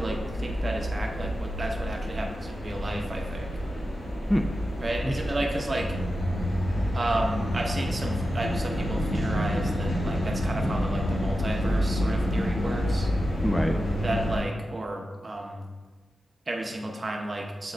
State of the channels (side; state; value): both; normal; correlation 0.91